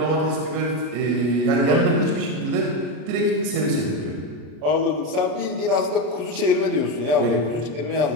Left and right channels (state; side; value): late; left; 33 ms